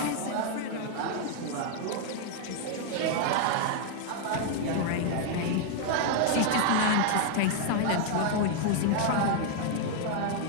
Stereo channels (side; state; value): both; different; correlation 0.00